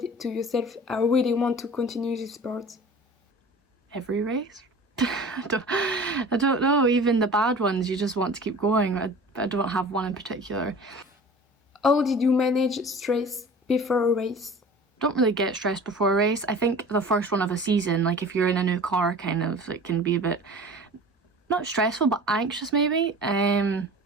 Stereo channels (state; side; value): normal; both; correlation 0.41